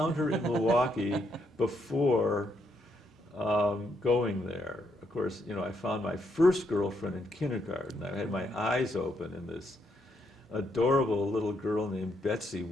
her in Milwaukee before going there. Of course, I found my first girlfriend in kindergarten. I had my eyes open, and this adorable little girl named Betsy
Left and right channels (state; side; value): normal; both; correlation 0.76